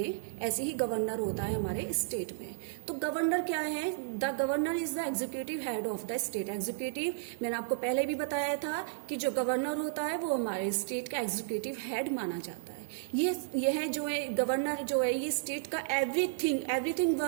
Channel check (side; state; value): left; silent; digital silence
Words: ऐसे ही गवर्नर होता है हमारे स्टेट में। तो गवर्नर क्या है? The governor is the executive head of the state. Executive, मैंने आपको पहले भी बताया था कि जो गवर्नर होता है वो हमारे स्टेट का एग्जीक्यूटिव हेड माना जाता है। यह जो है गवर्नर जो है, ये स्टेट का एवरीथिंग